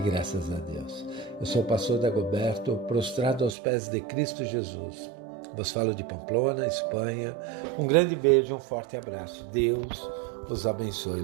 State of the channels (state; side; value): drops out; left; at 3.6 s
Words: a Deus. Eu sou o pastor Dagoberto, prostrado aos pés de Cristo Jesus. Vos falo de Pamplona, Espanha. Um grande beijo, um forte abraço. Deus os abençoe.